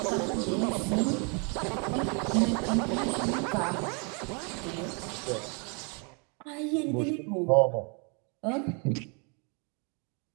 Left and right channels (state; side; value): quieter; left; 35.0 dB